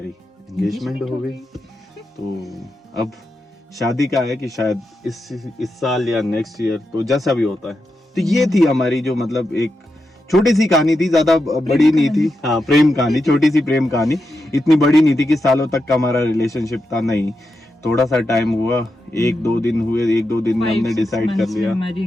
एंगेजमेंट हो गई। तो अब शादी का है कि शायद इस साल या नेक्स्ट ईयर, तो जैसा भी होता है। तो ये थी हमारी जो मतलब एक छोटी सी कहानी थी, ज्यादा बड़ी नहीं थी। हाँ, प्रेम कहानी, छोटी सी प्रेम कहानी, इतनी बड़ी नहीं थी कि सालों तक का हमारा रिलेशनशिप था, नहीं। थोड़ा सा टाइम हुआ, 1-2 दिन हुए, 1-2 दिन में हमने डिसाइड कर लिया, हमारी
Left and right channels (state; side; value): normal; both; correlation 0.87